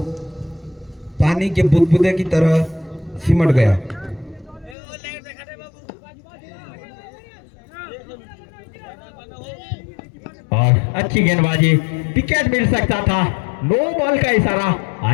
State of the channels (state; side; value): drops out; right; at 4.8 s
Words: पानी के बुदबुदे की तरह सिमट गया। और अच्छी गेंदबाजी, विकेट मिल सकता था। नो बॉल का इशारा